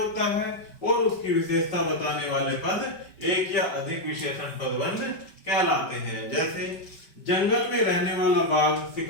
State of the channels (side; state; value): right; late; 5.2 ms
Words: है और उसकी विशेषता बताने वाले पद एक या अधिक विशेषण पदबंध कहलाते हैं। जैसे जंगल में रहने वाला बाघ